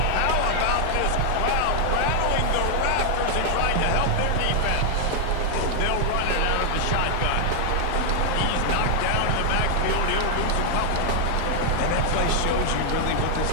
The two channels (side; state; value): both; different; correlation 0.00